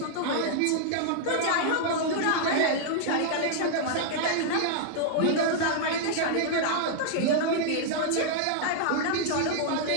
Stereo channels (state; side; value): different; both; correlation -0.01